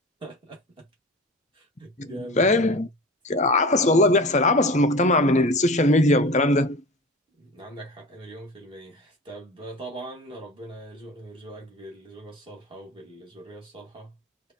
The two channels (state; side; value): normal; both; correlation 0.34